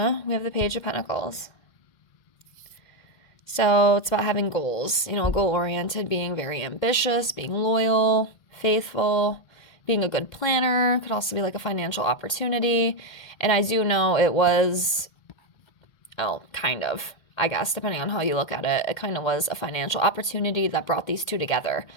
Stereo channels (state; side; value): late; right; 2.2 ms